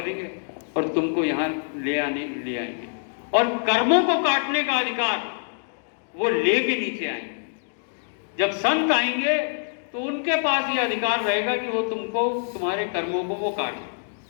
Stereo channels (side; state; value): right; silent; digital silence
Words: और तुमको यहाँ ले आएंगे और कर्मों को काटने का अधिकार वो लेके नीचे आएंगे। जब संत आएंगे तो उनके पास ये अधिकार रहेगा कि वो तुमको तुम्हारे कर्मों को वो काटे।